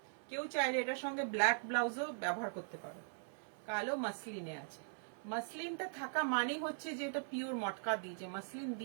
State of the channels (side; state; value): left; silent; digital silence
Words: কেউ চাইলে এটার সঙ্গে ব্ল্যাক ব্লাউজও ব্যবহার করতে পারো। কালো মাসলিনে আছে, মাসলিনটা থাকা মানেই হচ্ছে যে এটা পিওর মটকা দিয়েছে, মাসলিন